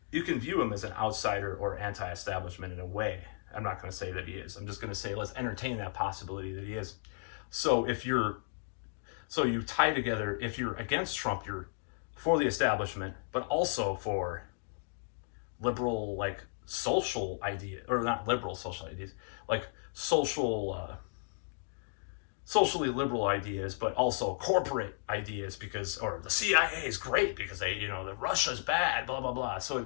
you can view him as an outsider or anti-establishment in a way. I'm not going to say that he is. I'm just going to say, let's entertain that possibility that he is. So you tie together, if you're against Trump, you're for the establishment, but also for liberal, like social ideas, or not liberal social ideas, like socially liberal ideas, but also corporate ideas, or the CIA is great because they, the Russia's bad, blah, blah, blah. So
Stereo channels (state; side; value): silent; right; digital silence